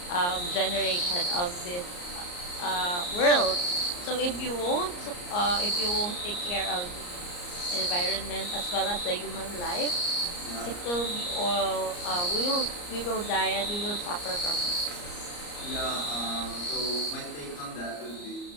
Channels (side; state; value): right; late; 34 ms